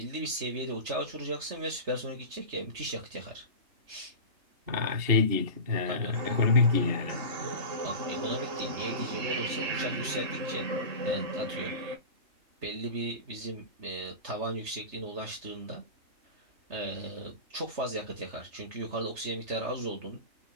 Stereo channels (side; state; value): left; late; 3.2 ms